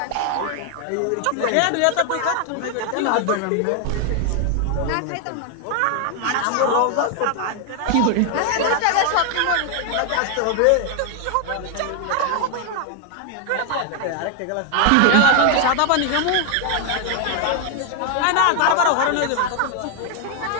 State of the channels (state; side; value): different; both; correlation 0.00